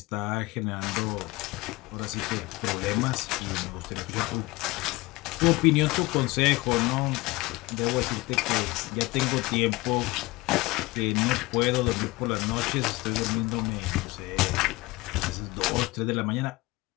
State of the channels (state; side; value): quieter; right; 21.8 dB